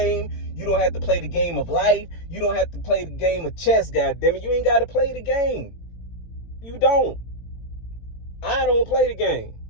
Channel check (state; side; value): late; right; 18 ms